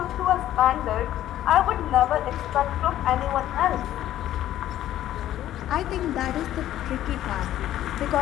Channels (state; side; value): quieter; right; 12.7 dB